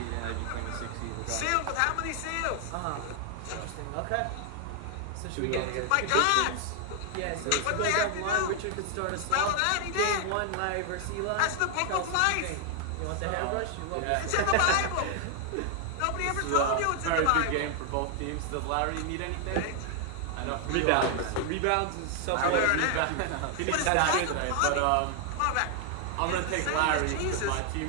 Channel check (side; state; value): both; different; correlation 0.00